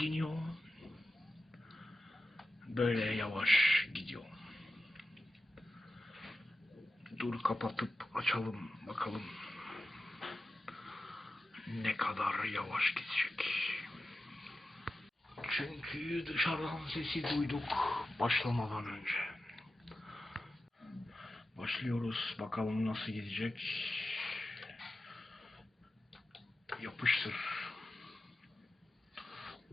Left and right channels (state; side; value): normal; both; correlation 0.92